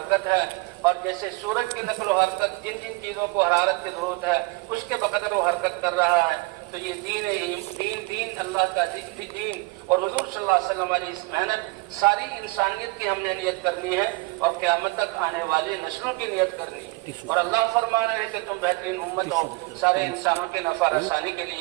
ہے، اور جیسے سورج کی نقل و حرکت جن جن چیزوں کو حرارت کی ضرورت ہے اس کے بقدر وہ حرکت کر رہا ہے. تو یہ دین اللہ کا دین اور حضور صلی اللہ علیہ وسلم والی اس محنت ساری انسانیت کی ہم نے نیت کرنی ہے، اور قیامت تک آنے والی نسلوں کی نیت کرنی ہے. اور اللہ فرما رہے ہیں کہ تم بہترین امت ہو، سارے انسانوں کے نفع رسانی کے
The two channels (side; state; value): left; quieter; 25.1 dB